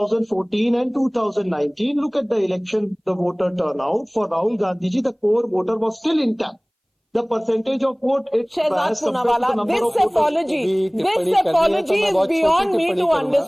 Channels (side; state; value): both; identical; correlation 1.00